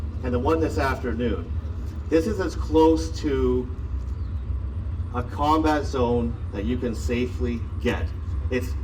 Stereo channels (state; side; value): identical; both; correlation 1.00